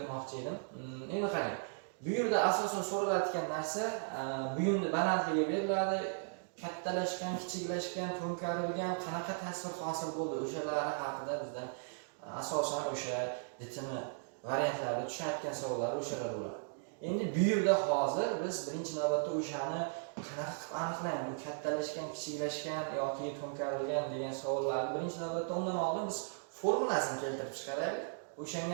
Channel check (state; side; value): silent; left; digital silence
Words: edim. Endi qarang. Bu yerda asosan so'ralayotgan narsa buyumni balandligi beriladi. Kattalashgan, kichiklashgan, to'nkarilgan qanaqa tasvir hosil bo'ldi, o'shalari haqida bizdan asosan o'sha DTM variantlarida tushayotgan savollar o'shalar bo'ladi. Endi bu yerda hozir biz birinchi navbatda o'shani qanaqa qilib aniqlaymiz, kattalashgan, kichiklashgan yoki to'nkarilgan degan savollarni birinchi navbatda undan oldin biz formulasini keltirib chiqaraylik.